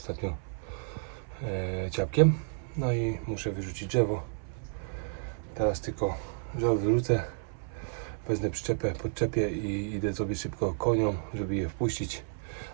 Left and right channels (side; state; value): left; silent; 57 dB below the other